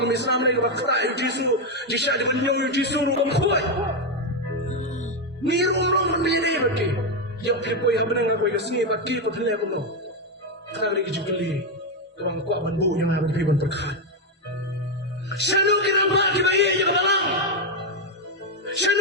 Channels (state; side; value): normal; both; correlation 0.05